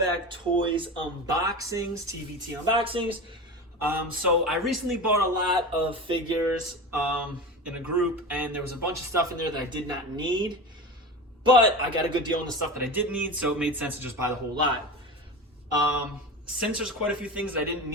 Toys Unboxings, TBT Unboxings. So I recently bought a lot of figures in a group, and there was a bunch of stuff in there that I did not need, but I got a good deal on the stuff that I did need, so it made sense to just buy the whole lot. Since there's quite a few things that I didn't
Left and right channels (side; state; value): both; normal; correlation 0.28